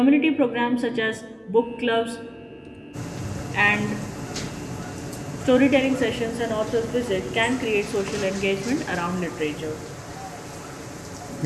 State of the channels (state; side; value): identical; both; correlation 1.00